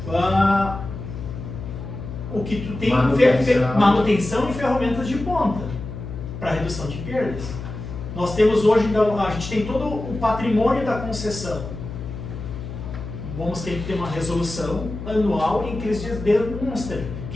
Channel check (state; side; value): noise; left; hum, 9 dB below the sound